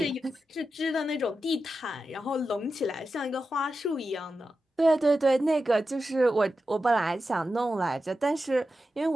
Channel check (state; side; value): normal; both; correlation 0.91